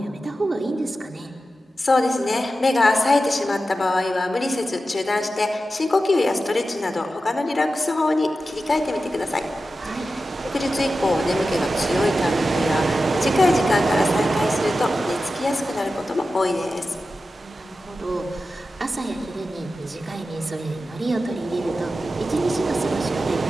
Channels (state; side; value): normal; both; correlation 0.92